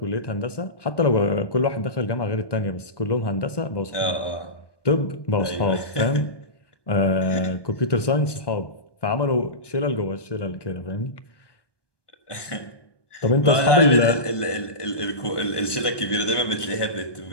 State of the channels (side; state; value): right; late; 1.2 ms